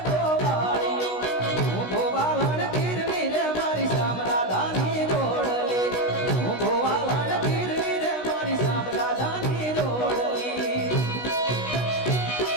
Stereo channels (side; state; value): right; late; 16 ms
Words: गोवालियो हूँ गोवालन गिरनी रे मारी सामना धानी जोड़ली हूँ गोवालन गिरनी रे मारी सामना धानी जोड़ली